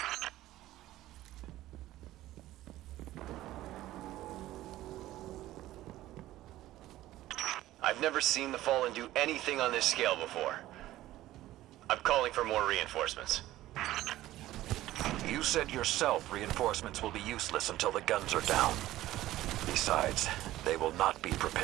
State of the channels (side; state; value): left; quieter; 15.2 dB